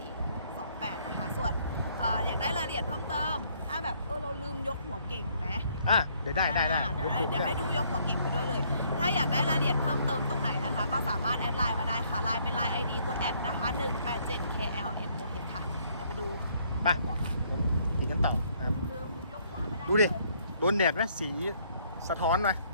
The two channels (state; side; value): inverted; both; correlation -0.66